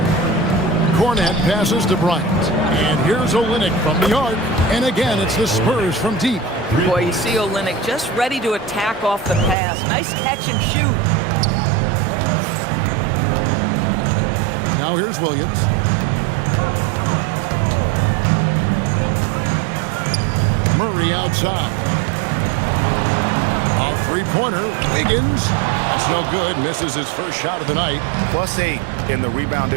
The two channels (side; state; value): left; drops out; at 9.6 s